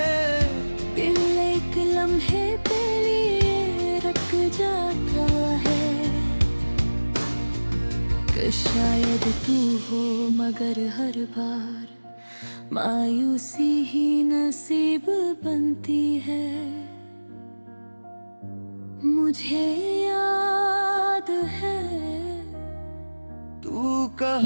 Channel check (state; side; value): inverted; both; correlation -1.00